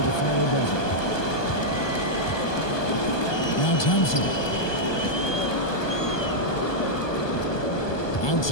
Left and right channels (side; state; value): right; late; 1.2 ms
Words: the final buzzer. Now Thompson.